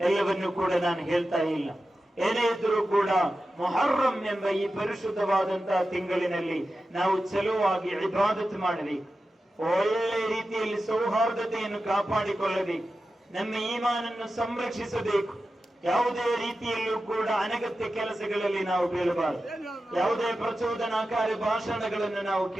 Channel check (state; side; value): normal; both; correlation 0.93